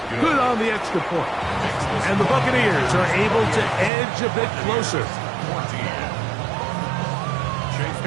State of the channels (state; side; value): drops out; left; at 3.9 s